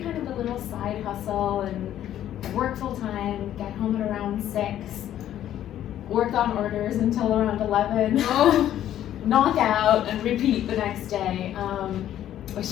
kind of a little side hustle, and I work full time, get home at around 6, work on orders until around 11, knock out and repeat the next day,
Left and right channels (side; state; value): right; quieter; 11.6 dB